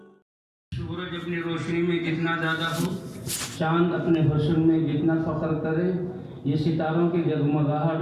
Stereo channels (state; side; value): identical; both; correlation 1.00